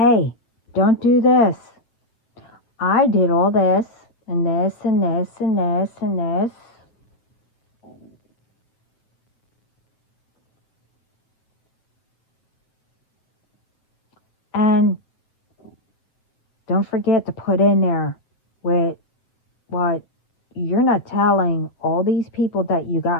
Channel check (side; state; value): right; late; 8.7 ms